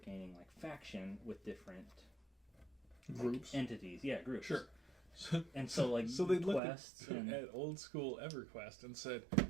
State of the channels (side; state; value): left; drops out; at 6.6 s